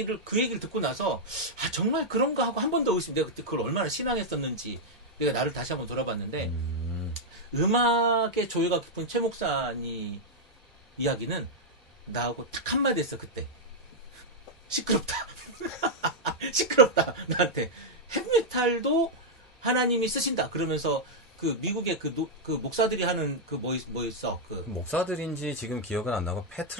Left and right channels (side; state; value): both; normal; correlation -0.03